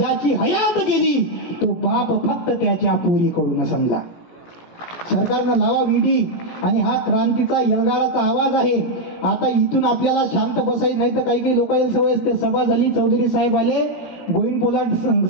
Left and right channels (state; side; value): late; right; 17 ms